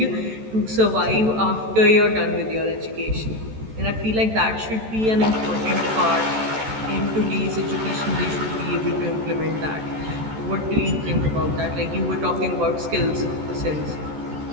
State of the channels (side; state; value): left; late; 14 ms